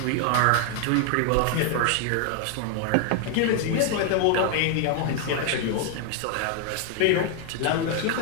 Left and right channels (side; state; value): both; different; correlation 0.00